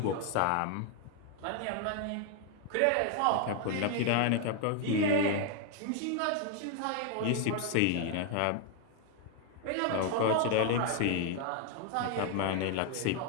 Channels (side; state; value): both; different; correlation 0.01